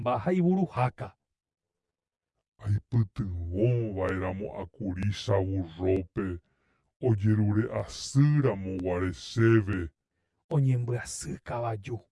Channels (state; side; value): identical; both; correlation 1.00